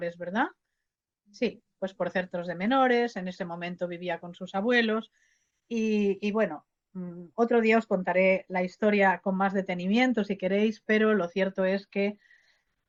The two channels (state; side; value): identical; both; correlation 1.00